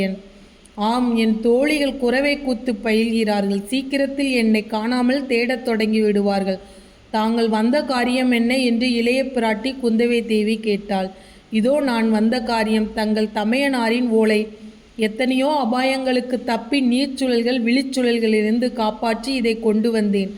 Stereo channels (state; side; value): identical; both; correlation 1.00